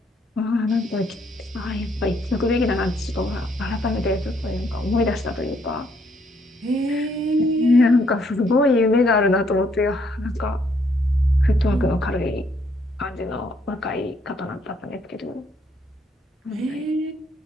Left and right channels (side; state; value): both; normal; correlation 0.70